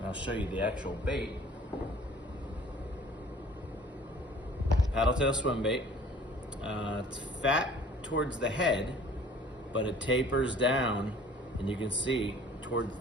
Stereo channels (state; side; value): normal; both; correlation 0.51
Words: I'll show you the actual bait. Paddle tail swim bait. It's fat towards the head, but it tapers down, and you can see towards